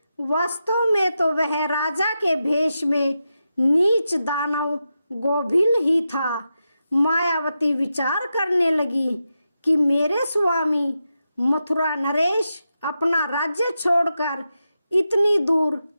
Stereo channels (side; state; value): both; inverted; correlation -0.88